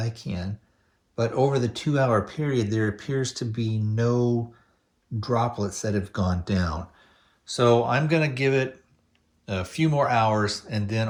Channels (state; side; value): identical; both; correlation 1.00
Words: can, but over the 2-hour period, there appears to be no droplets that have gone down. So I'm going to give it a few more hours, and then